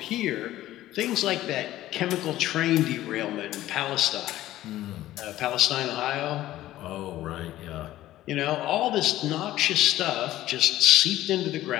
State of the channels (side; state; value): right; quieter; 14.7 dB